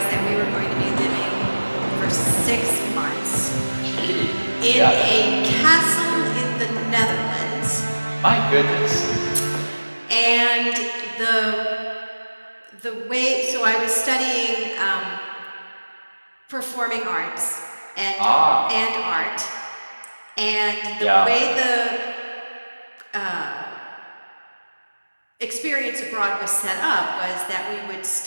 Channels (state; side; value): inverted; both; correlation -1.00